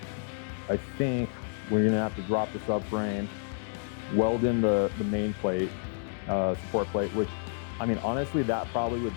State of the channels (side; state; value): right; silent; digital silence